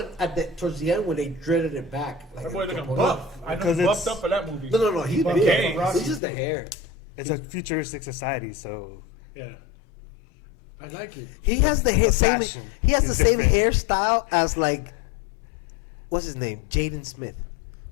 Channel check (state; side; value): drops out; right; at 6.2 s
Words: towards the end when they dreaded it back. Like That boy looking no, buff. I know Because he it's- buffed up for that movie. no, he's buffed big. up for Rocky It's just the too. hair. It's a futuristic society, so Yeah. I like it. He has the same. fashion He has the is same different. hairstyle as like, what's his name? Jaden Smith.